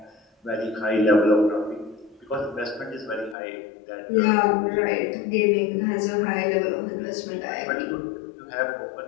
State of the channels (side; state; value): right; drops out; at 3.4 s